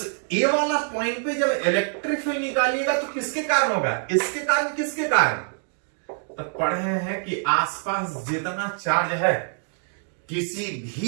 A वाला पॉइंट पे जब इलेक्ट्रिक फील्ड निकालिएगा तो किसके कारण होगा, इसके कारण किसके कारण। तो पढ़े हैं कि आसपास जितना चार्ज है किसी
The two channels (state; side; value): silent; left; 56 dB below the other